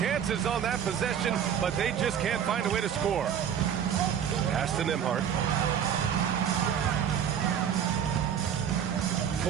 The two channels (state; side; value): quieter; left; 8.7 dB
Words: on that possession, but they just can't find a way to score. Pass to Nembhard.